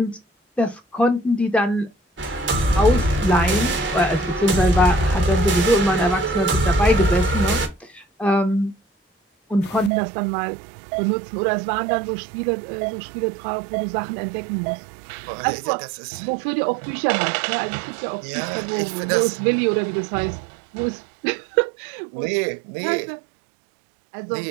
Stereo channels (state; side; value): drops out; left; at 9.9 s